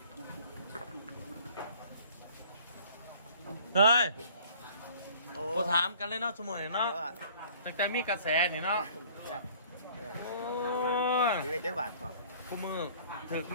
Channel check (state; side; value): inverted; both; correlation -0.53